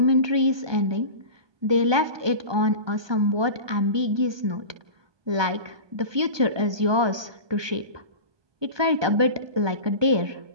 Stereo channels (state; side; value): late; left; 1.2 ms